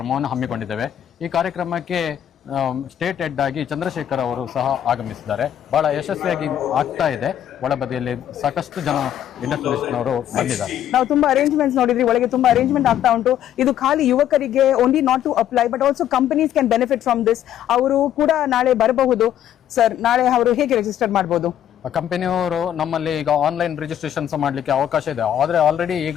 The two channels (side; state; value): right; quieter; 10.7 dB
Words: ಹಮ್ಮಿಕೊಂಡಿದ್ದೇವೆ. ಈ ಕಾರ್ಯಕ್ರಮಕ್ಕೆ ಸ್ಟೇಟ್ ಹೆಡ್ ಆಗಿ ಚಂದ್ರಶೇಖರ್ ಅವರು ಸಹ ಆಗಮಿಸಿದ್ದಾರೆ. ಬಹಳ ಯಶಸ್ವಿಯಾಗಿ ಆಗ್ತಾ ಇದೆ. ಒಳಬದಿಯಲ್ಲಿ ಸಾಕಷ್ಟು ಜನ ಇಂಡಸ್ಟ್ರಿಯಲಿಸ್ಟ್ನವರು ಬಂದಿದ್ದಾರೆ. ನಾವು ತುಂಬಾ ಅರೇಂಜ್ಮೆಂಟ್ಸ್ ನೋಡಿದ್ರಿ, ಒಳಗೆ ತುಂಬಾ ಅರೇಂಜ್ಮೆಂಟ್ ಆಗ್ತಾ ಉಂಟು. ಇದು ಖಾಲಿ ಯುವಕರಿಗೆ only not to apply but also companies can benefit from this. ಅವರು ಕೂಡ ನಾಳೆ ಬರಬಹುದು ಸರ್. ನಾಳೆ ಅವರು ಹೇಗೆ ರಿಜಿಸ್ಟರ್ ಮಾಡಬಹುದು? ಕಂಪನಿಯವರು ನಮ್ಮಲ್ಲಿ ಈಗ ಆನ್ಲೈನ್ ರಿಜಿಸ್ಟ್ರೇಷನ್ಸ್ ಮಾಡಲಿಕ್ಕೆ ಅವಕಾಶ ಇದೆ. ಆದರೆ ಆಲ್ರೆಡಿ